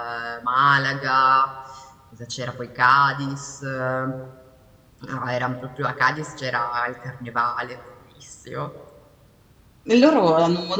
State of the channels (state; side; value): identical; both; correlation 1.00